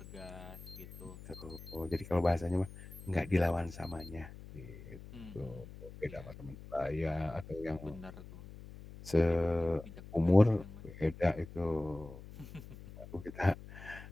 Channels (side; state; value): left; noise; hum, 15 dB below the sound